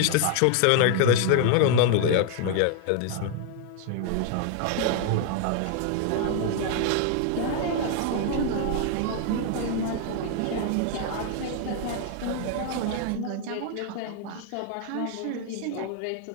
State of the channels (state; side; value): different; both; correlation 0.00